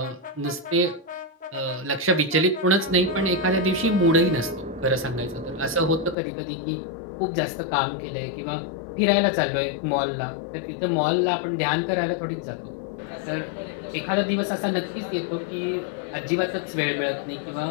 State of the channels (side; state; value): right; drops out; at 6.2 s